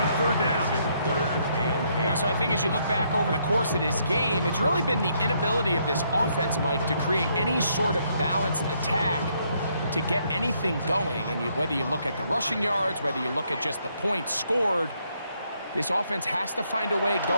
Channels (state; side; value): inverted; both; correlation -0.72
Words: 3rd down. You know, so I think as you look back over the course of this game, it's really been the inability of this offense, Mike, to create any sort of balanced attack to get anything going. And whether you look at the rushing yards, whether you look at just the points scored, this offense has to find a way